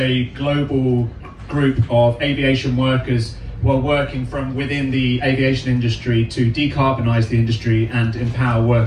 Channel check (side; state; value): both; identical; correlation 1.00